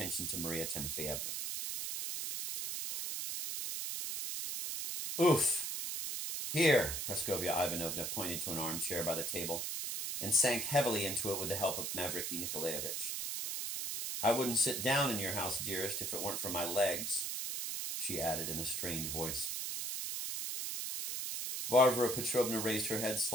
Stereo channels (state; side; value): noise; right; hiss, 3 dB below the sound